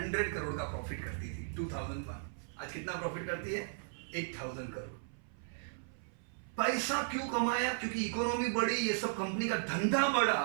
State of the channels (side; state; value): left; silent; 54 dB below the other